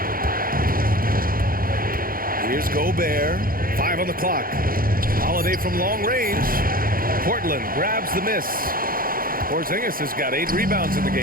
Here's Gobert. 5 on the clock. Holiday from long range. Portland grabs the miss. Porzingis has got 8 rebounds in the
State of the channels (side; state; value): left; late; 0.42 ms